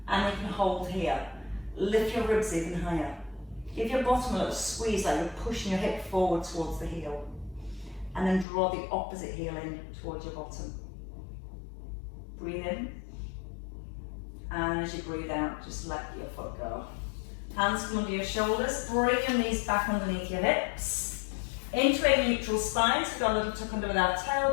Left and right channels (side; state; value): right; drops out; at 8.5 s